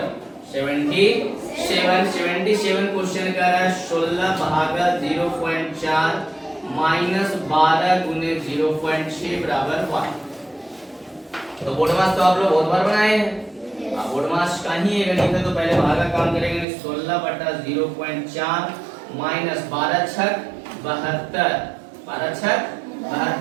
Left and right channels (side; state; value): left; drops out; at 16.7 s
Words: क्वेश्चन कर रहा है 16 भागा 0.4 माइनस 12 गुने 0.6 बराबर 1। तो बोर्ड मास तो आप लोग बहुत बार बनाए हैं। बोर्ड मास का ही ये गणित है तो पहले भागा काम करेंगे 16 बटा 0.4 माइनस 12 छक 72 12 छक